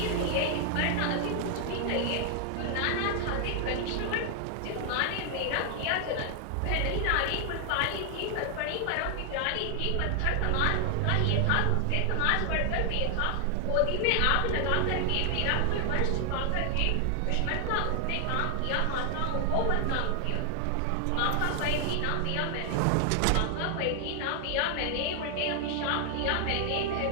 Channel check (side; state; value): both; different; correlation 0.00